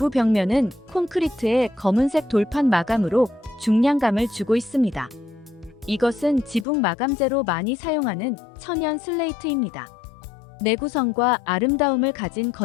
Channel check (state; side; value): drops out; right; at 6.7 s